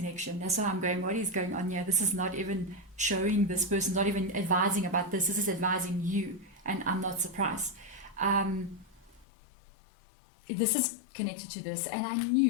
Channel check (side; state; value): right; drops out; at 9.2 s